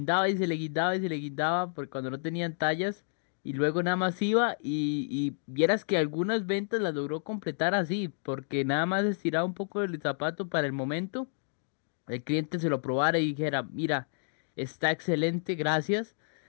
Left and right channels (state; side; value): silent; right; digital silence